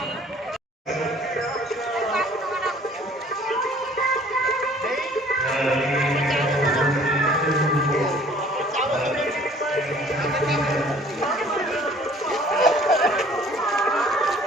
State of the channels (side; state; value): both; normal; correlation 0.53